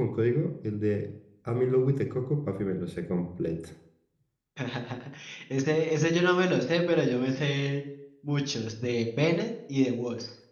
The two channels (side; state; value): both; identical; correlation 1.00